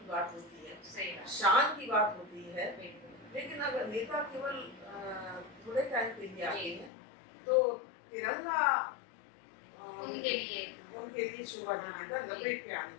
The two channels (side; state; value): right; drops out; at 6.9 s